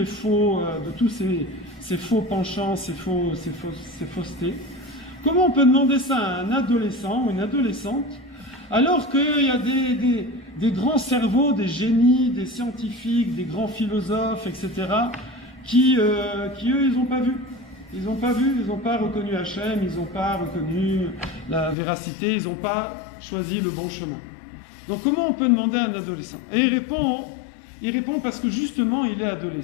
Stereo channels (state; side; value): drops out; right; at 21.8 s